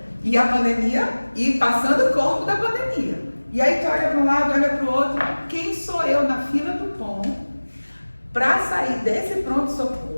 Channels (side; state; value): both; inverted; correlation -1.00